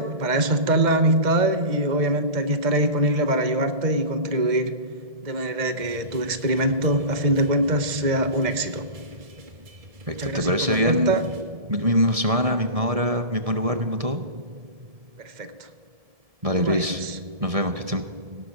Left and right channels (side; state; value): left; late; 1.6 ms